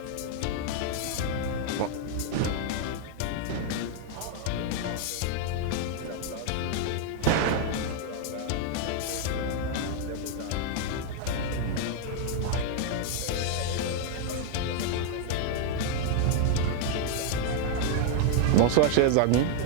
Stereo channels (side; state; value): both; different; correlation 0.00